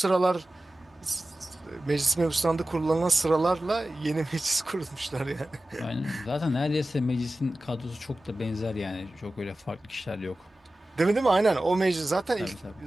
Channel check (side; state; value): both; normal; correlation 0.95